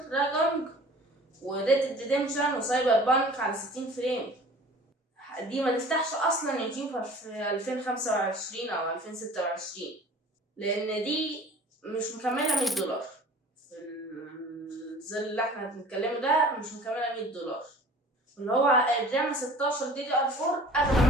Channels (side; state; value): both; normal; correlation 0.45